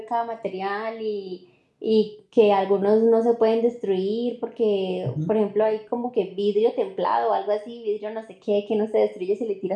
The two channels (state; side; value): identical; both; correlation 1.00